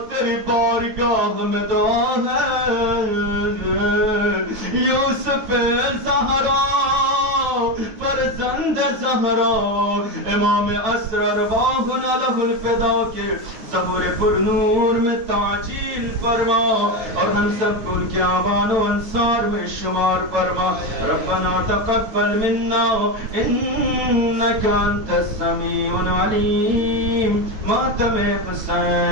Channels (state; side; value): late; left; 9.1 ms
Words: تیری بارگاہ میں دعا ہے, یوسف زہرا فرزند زہرا امام اسرار واہنا لہ الفدا کے ظہور پر نور میں تعجیل فرما, اور ہم سب کو ان کے آبان و انصار میں شمار فرما. ربنا تقبل منا انك انت السمیع العلیم. ماتم